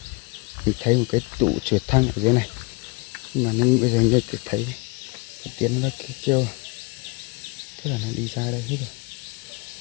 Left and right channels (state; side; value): quieter; right; 27.6 dB